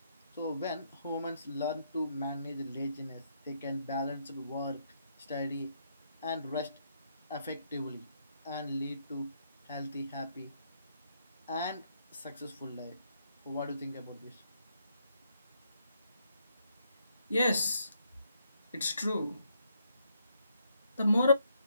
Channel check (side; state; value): both; inverted; correlation -0.75